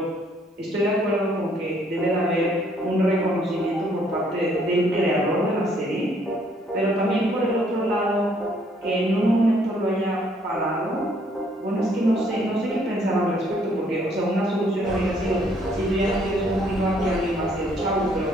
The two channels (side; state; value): both; normal; correlation 0.66